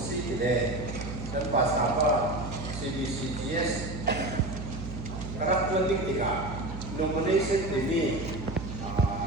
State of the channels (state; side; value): noise; right; hum, 8 dB below the sound